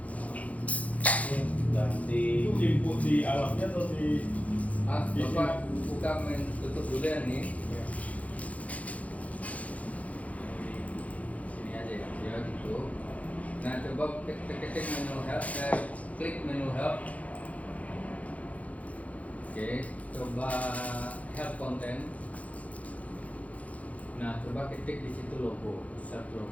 Ganti. Itu input di alatnya atau di Ah, bapak buka tutup dulu ya nih. Sini aja ya, ya gitu. Nah coba ketik menu help, klik menu help. Oke, coba help content. Nah coba ketik di situ logo, search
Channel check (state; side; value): late; right; 0.068 ms